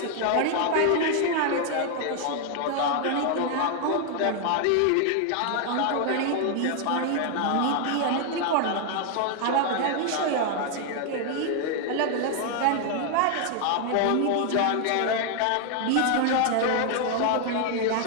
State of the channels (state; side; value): different; both; correlation 0.00